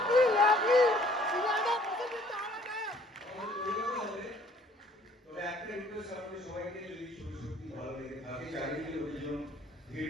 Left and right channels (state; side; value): normal; both; correlation 0.58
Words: লাভলি তবে একটা রিকোয়েস্ট আপনাদের সবাইকে, যদি ছবি সত্যি ভালো লেগে থাকে, চারিদিকে লোকজন ভিড়